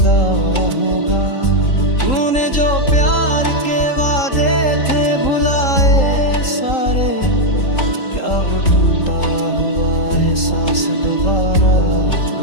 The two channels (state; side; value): late; right; 3.8 ms